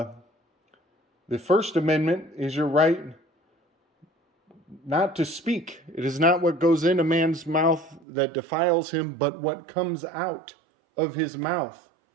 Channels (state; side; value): drops out; left; at 8.1 s